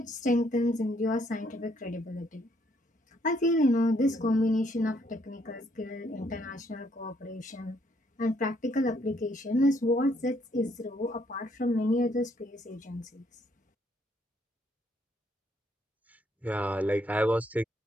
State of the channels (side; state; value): both; normal; correlation 0.70